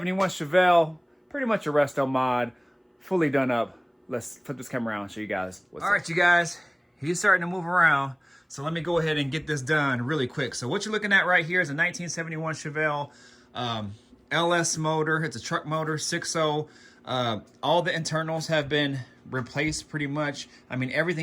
Chevelle, pretty much a resto mod, fully done up. Let's flip this camera around and show you guys what's up. All right, you guys, he's starting to move around. So let me go ahead and get this done really quick. So what you're looking at right here is a 1971 Chevelle LS motor. It's a truck motor, 6.0. All the internals have been replaced pretty much. I mean,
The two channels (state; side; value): identical; both; correlation 1.00